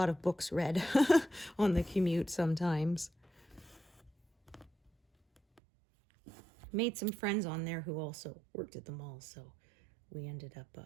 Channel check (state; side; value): drops out; left; at 5.6 s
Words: of books read on the commute sometimes. Made some friends on there who also worked at the mall, so we ended up